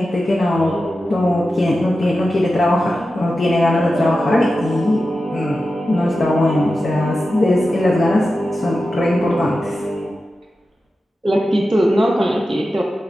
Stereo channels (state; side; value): normal; both; correlation 0.92